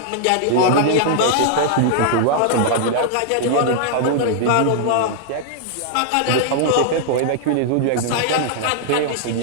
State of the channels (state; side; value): different; both; correlation -0.01